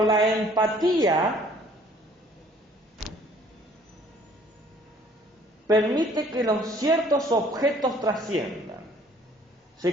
la empatía permite que los ciertos objetos trasciendan,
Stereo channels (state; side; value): normal; both; correlation 0.57